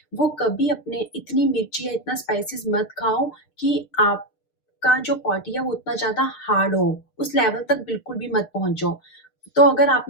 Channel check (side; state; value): right; late; 6.6 ms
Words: वो कभी अपने इतनी मिर्ची या इतना स्पाइसेस मत खाओ कि आपका जो बॉडी है वो उतना ज़्यादा हार्ड हो, उस लेवल तक बिल्कुल भी मत पहुँचो। तो अगर